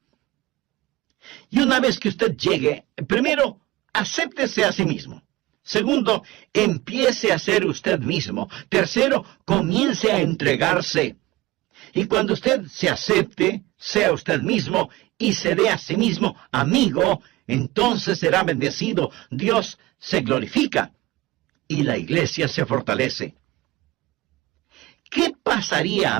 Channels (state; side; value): quieter; left; 18.1 dB